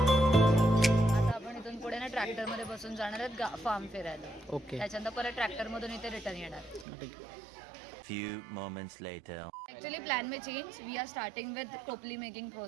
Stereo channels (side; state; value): left; drops out; at 6.9 s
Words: ट्रॅक्टर मध्ये बसून जाणार आहेत फार्म फिरायला. ओके. त्याच्यानंतर परत ट्रॅक्टर मधून इथे रिटर्न येणार. Few moments later. Actually plan में change. We are starting with टोपली मेकिंग